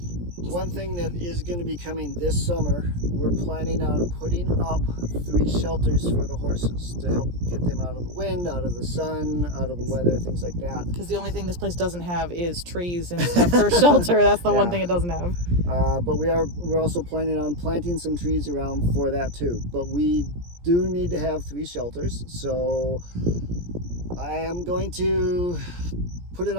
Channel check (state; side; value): late; left; 17 ms